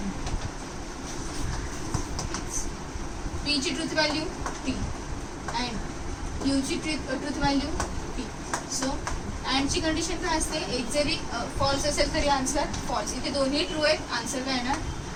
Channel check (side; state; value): both; identical; correlation 1.00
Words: पीची ट्रूथ व्हॅल्यू टी अँड क्यूची ट्रूथ व्हॅल्यू टी. सो अँडची कंडिशन काय असते, एक जरी फॉल्स असेल तरी आन्सर फॉल्स. इथे दोन्ही ट्रू आहेत, आन्सर काय येणार